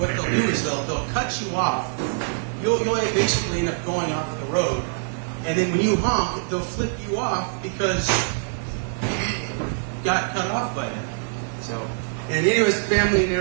they'll do is they'll cut you off. You'll basically end up going off the road, and then when you honk, they'll flip you off because you got cut off by them. So. And anyways, the family in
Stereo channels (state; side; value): silent; left; digital silence